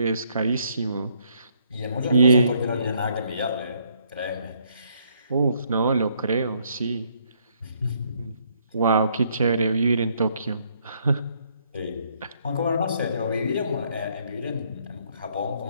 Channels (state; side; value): inverted; both; correlation -0.69